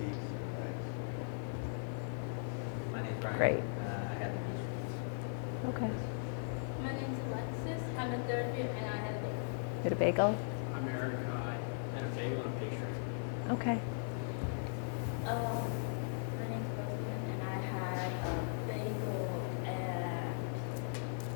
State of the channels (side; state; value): right; silent; 52 dB below the other